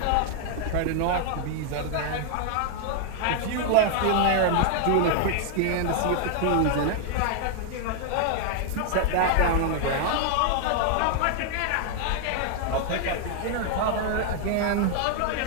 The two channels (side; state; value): both; different; correlation 0.00